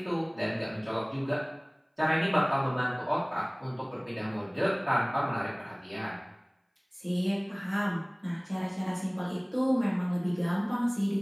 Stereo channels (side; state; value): both; identical; correlation 1.00